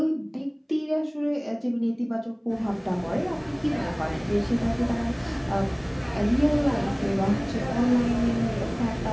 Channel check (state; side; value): identical; both; correlation 1.00